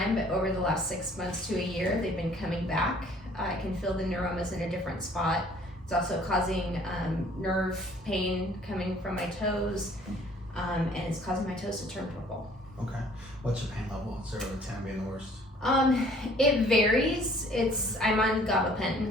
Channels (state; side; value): normal; both; correlation 0.56